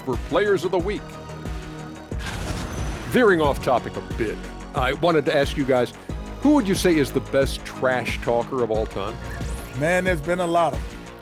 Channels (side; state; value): both; identical; correlation 1.00